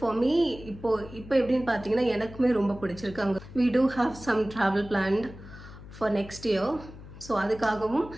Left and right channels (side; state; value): left; noise; hum, 16 dB below the sound